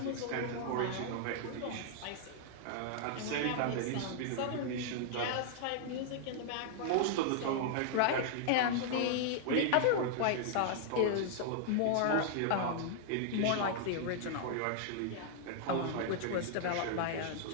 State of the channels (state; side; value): different; both; correlation -0.01